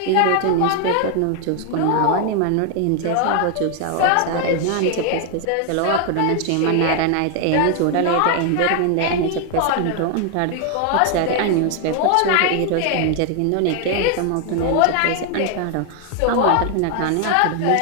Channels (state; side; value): different; both; correlation 0.00